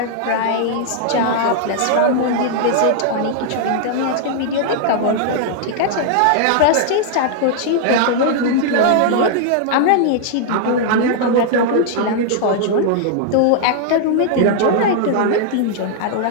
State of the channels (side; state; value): both; different; correlation -0.01